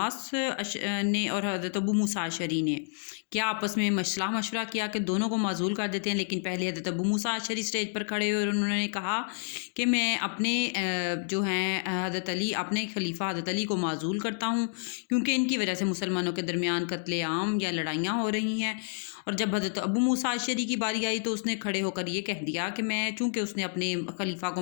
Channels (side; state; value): right; silent; digital silence